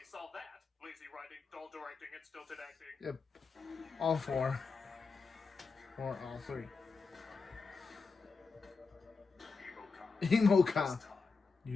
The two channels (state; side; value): quieter; right; 4.6 dB